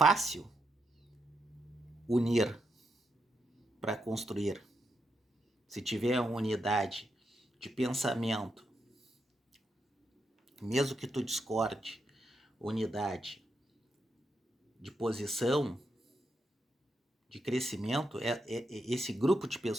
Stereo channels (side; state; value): both; normal; correlation 0.83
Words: unir para construir, se tiver uma unidade de pensamento, mesmo que tu discorde, unidade de posição, de crescimento, esse grupo de